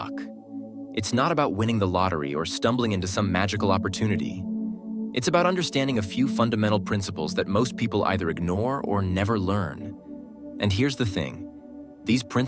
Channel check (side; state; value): both; identical; correlation 1.00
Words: It's not about winning the lottery or stumbling into some magical opportunity. It's about understanding a few fundamental principles that most people either ignore or never learn. And here's the thing. These